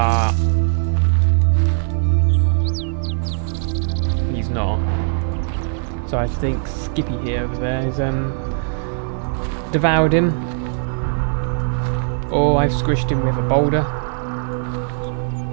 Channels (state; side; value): silent; left; 58 dB below the other